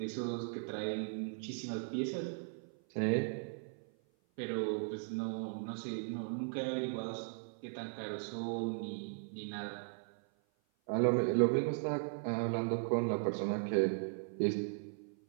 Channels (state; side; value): silent; left; 53 dB below the other